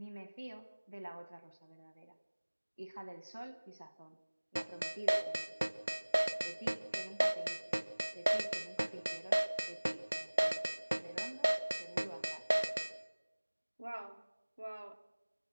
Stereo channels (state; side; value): inverted; both; correlation -1.00